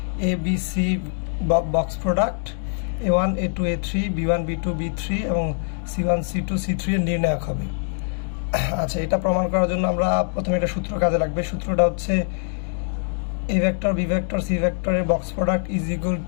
a b c box product a1 a2 a3 b1 b2 b3 এবং c1 c2 c3 এর নির্ণায়ক হবে। আচ্ছা, এটা প্রমাণ করার জন্য আমরা প্রথমে একটা সূত্র কাজে লাগবে। সূত্রটা হচ্ছে a vector b vector c vector এর box product is equal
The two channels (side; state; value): right; silent; digital silence